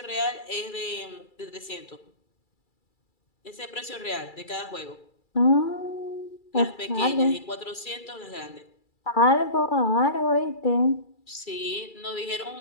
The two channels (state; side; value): late; right; 2.3 ms